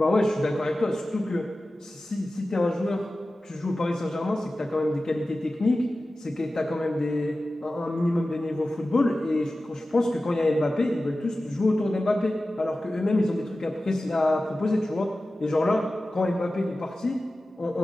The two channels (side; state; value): both; normal; correlation 0.95